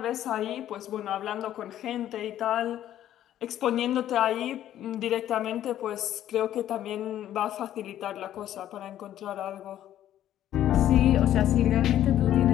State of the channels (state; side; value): quieter; right; 11.9 dB